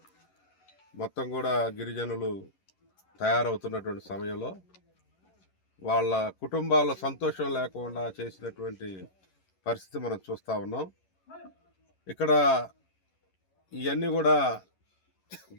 మొత్తం కూడా గిరిజనులు తయారవుతున్నటువంటి సమయంలో వాళ్ళ కుటుంబాల్లో సంతోషం లేకుండా చేసినటువంటి పరిస్థితి మనం చూస్తూ ఉన్నాం. ఇక్కడ ఇవన్నీ కూడా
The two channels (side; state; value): right; late; 11 ms